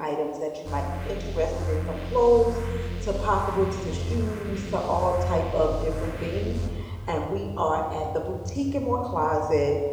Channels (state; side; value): identical; both; correlation 1.00